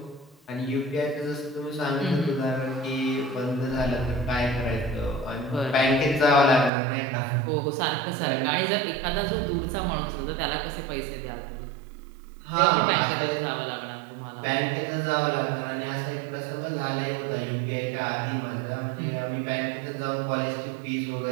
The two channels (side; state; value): left; drops out; at 6.7 s